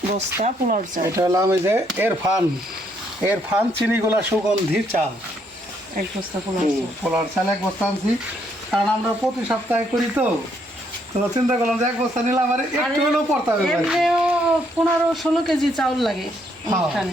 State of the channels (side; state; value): both; normal; correlation 0.72